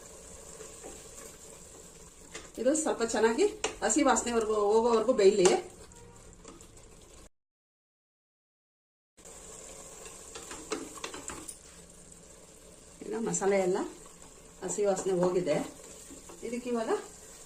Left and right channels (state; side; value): identical; both; correlation 1.00